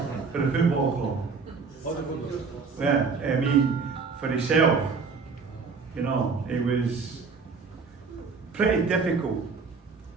for the football club. Well, I mean, for himself. You know, it was pretty difficult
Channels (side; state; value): left; quieter; 4.9 dB